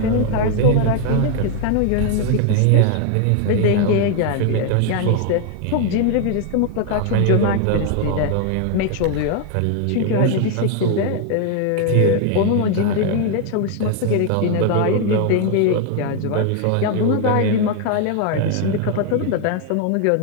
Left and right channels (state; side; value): different; both; correlation 0.01